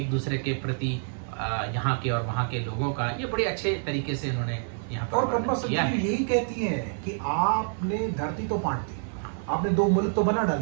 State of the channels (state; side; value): silent; left; digital silence